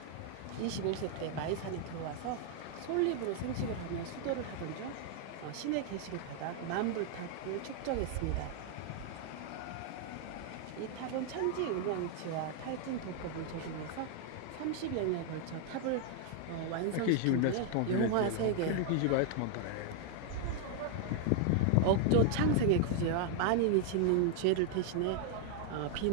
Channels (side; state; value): both; different; correlation 0.00